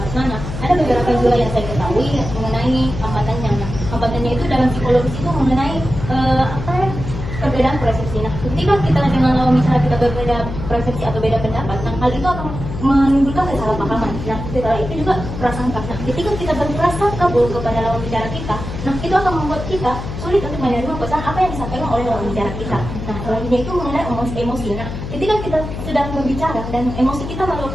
Nana, ada beberapa juga yang saya ketahui mengenai hambatannya. Nah, hambatannya itu dalam psikologis itu mengenai perbedaan persepsi. Nah, ketika kita dengan lawan bicara kita berbeda persepsi atau beda pendapat, nah hal itu akan menimbulkan kesalahpahaman. Nah, setelah itu juga prasangka. Nah, ketika kita berprasangka buruk kepada lawan bicara kita, nah itu akan membuat kita sulit untuk menerima pesan apa yang disampaikan oleh lawan bicara kita. Nah, selanjutnya itu mengenai emosi. Nah, ketika kita sedang berbicara dan emosi kita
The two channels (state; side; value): noise; left; hum, 7 dB below the sound